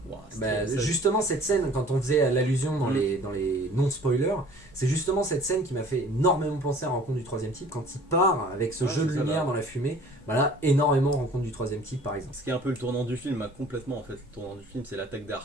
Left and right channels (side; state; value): both; normal; correlation 0.50